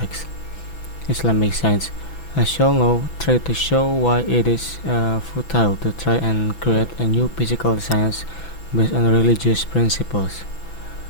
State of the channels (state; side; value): late; right; 6.0 ms